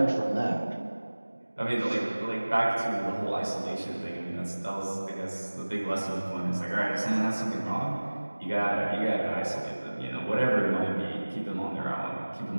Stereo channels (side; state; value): both; inverted; correlation -1.00